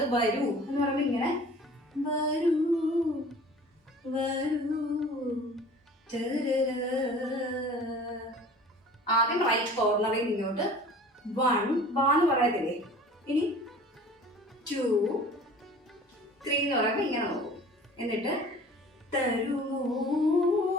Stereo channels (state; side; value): normal; both; correlation 0.45